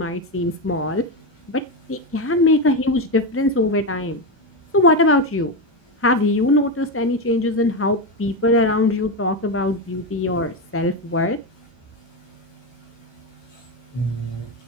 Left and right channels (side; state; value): both; normal; correlation 0.12